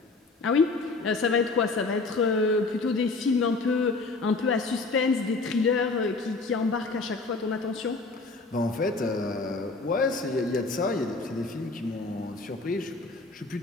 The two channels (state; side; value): quieter; right; 3.7 dB